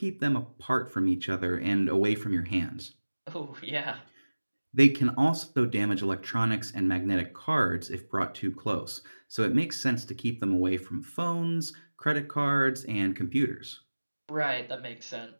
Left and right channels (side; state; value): both; inverted; correlation -1.00